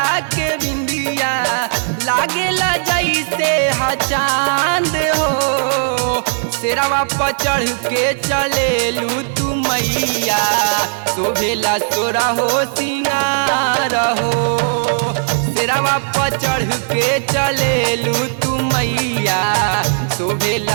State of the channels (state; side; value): silent; left; digital silence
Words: के बिंदिया, लागेला जैसे हा चांद हो। शेरवा पर चढ़ के चलेलू तू मैया, शोभेला तोरा हो सिंगार हो। शेरवा पर चढ़ के चलेलू तू मैया,